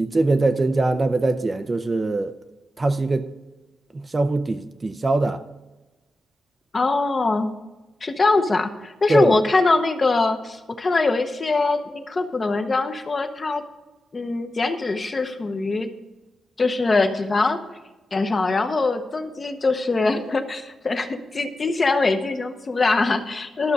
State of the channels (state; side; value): normal; both; correlation 0.92